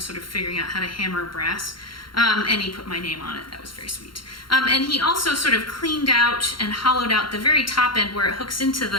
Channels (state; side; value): late; right; 0.73 ms